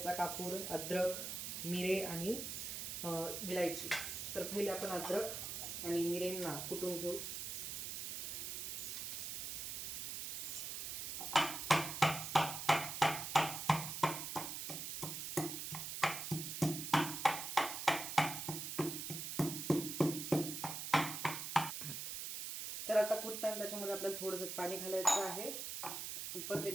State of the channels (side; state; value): right; noise; hiss, 4 dB below the sound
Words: कापूर, अद्रक, मिरे आणि विलायची. तर पहिले आपण अद्रक आणि मिरेंना कुटून घेऊ. तर आता कुटताना त्याच्यामध्ये आपल्याला थोडंसं पाणी घालायचं आहे. परत